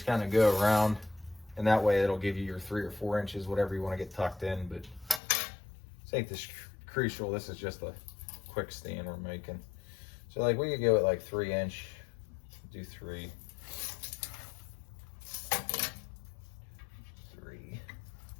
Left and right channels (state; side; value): drops out; right; at 5.2 s